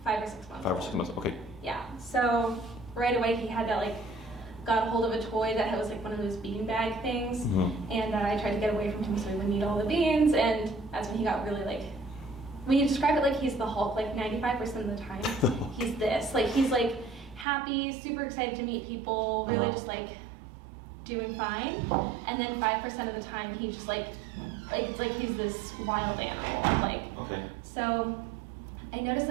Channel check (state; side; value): drops out; left; at 17.4 s